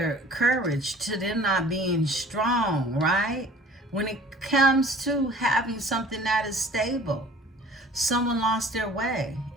courage, to them not being strong, right? When it comes to having something that is stable, someone lost their way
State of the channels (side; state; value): both; normal; correlation 0.48